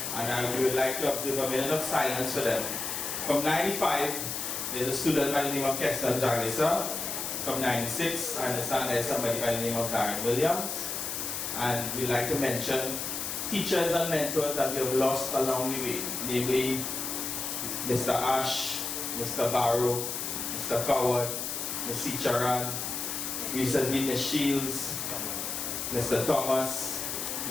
and we would like to observe a minute of silence for them. From 95, there's a student by the name of Keston Jagisa. From 96, I understand there's somebody by the name of Darren Williams. And we'd like to mention teachers and mentors that we have lost along the way, namely Mr. Ash, Mr. Barrow, Mr. Coward, Ms. Charan, recently Ms. Shields, Mr. Thomas,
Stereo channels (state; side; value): noise; left; hiss, 3 dB below the sound